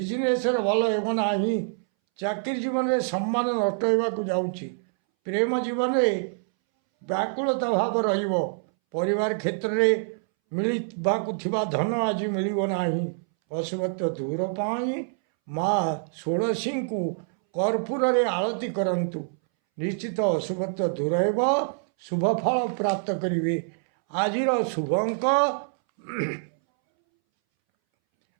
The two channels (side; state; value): left; silent; 61 dB below the other